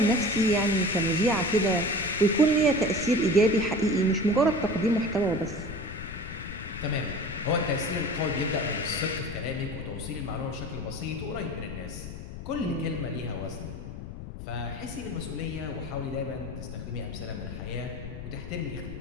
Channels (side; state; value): left; noise; rumble, 10 dB below the sound